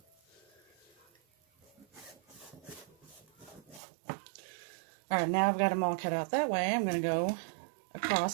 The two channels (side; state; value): left; drops out; at 3.8 s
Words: Alright, now I've got them all cut out that way. I'm going to go